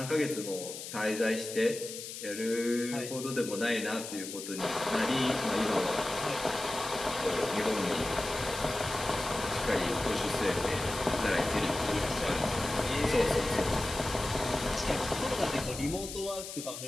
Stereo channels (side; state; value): left; noise; hiss, 9 dB below the sound